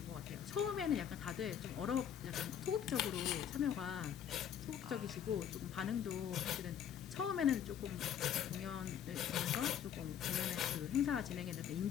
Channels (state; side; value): quieter; right; 9.1 dB